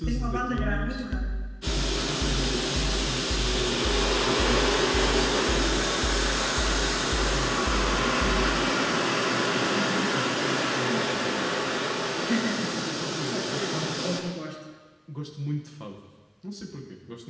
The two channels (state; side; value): identical; both; correlation 1.00